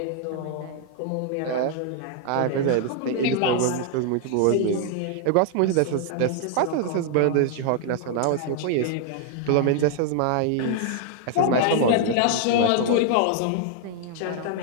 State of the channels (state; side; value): different; both; correlation 0.00